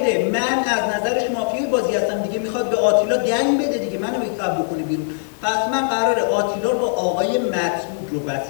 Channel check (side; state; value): right; silent; 56 dB below the other